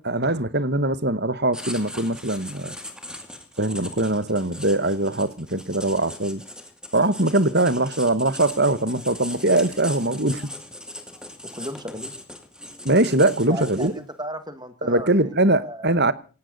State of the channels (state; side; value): normal; both; correlation -0.04